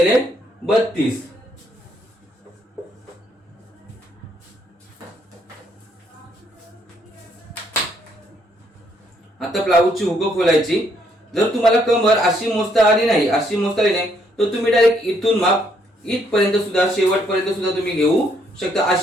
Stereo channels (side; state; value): both; normal; correlation 0.70